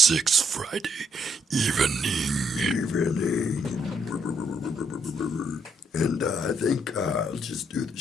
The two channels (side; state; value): both; normal; correlation 0.72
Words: Friday evening. And I think I'll just do the